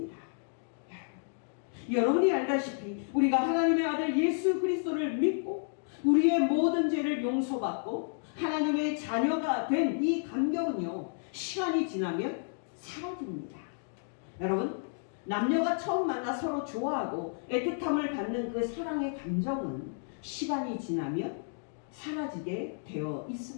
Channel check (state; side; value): silent; right; digital silence